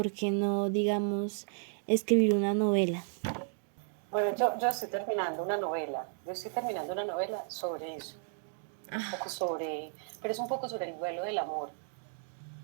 qué no, digamos, escribir una novela. Bueno, yo estoy terminando una novela. Yo estoy terminando una novela sobre eso. Un poco sobre, pero es un poco sobre el duelo del amor,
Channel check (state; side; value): silent; left; 55 dB below the other